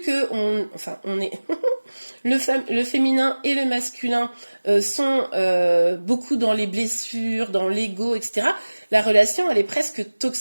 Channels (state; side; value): inverted; both; correlation -1.00